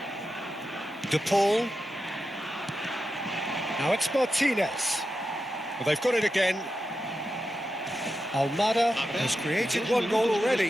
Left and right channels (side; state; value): both; normal; correlation 0.89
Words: De Paul. Now it's Martinez. Well, they've got it again. Almada has created one goal